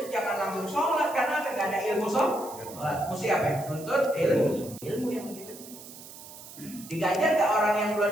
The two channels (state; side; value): noise; right; hiss, 16 dB below the sound